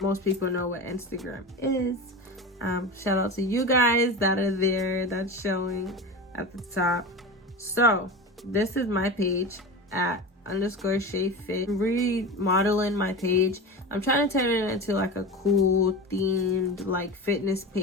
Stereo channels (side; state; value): both; normal; correlation 0.27